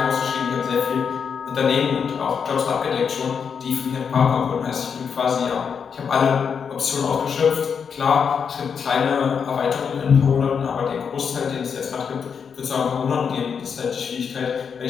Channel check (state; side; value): quieter; right; 6.6 dB